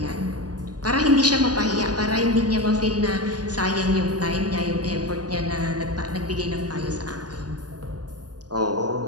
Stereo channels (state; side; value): late; left; 0.69 ms